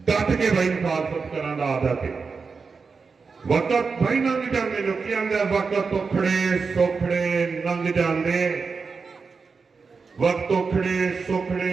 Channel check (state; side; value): quieter; left; 4.9 dB